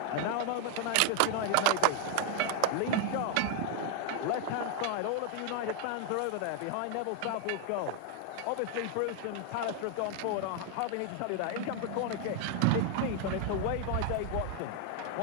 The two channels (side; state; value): both; different; correlation 0.00